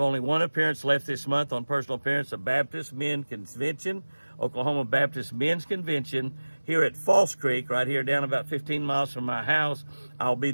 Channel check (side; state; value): both; inverted; correlation -1.00